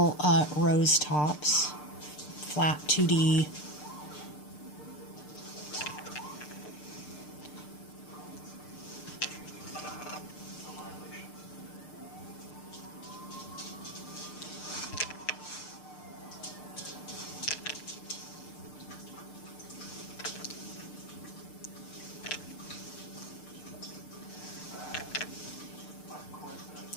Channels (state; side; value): late; right; 6.7 ms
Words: rose tops, flat 2D.